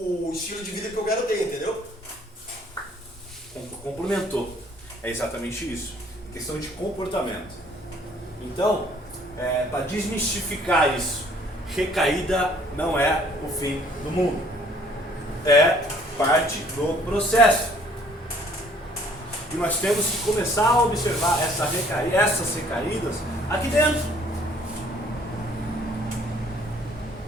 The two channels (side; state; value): both; normal; correlation 0.59